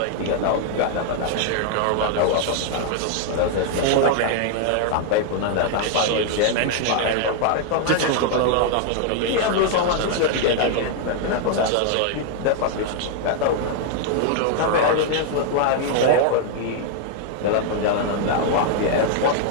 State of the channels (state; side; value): different; both; correlation 0.00